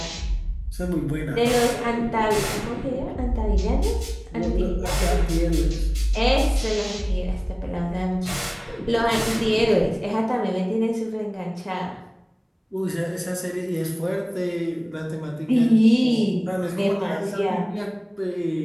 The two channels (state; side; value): identical; both; correlation 1.00